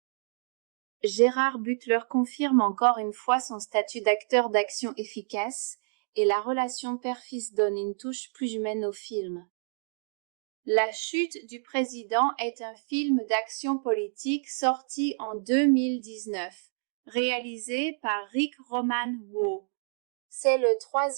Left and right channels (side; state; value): left; silent; digital silence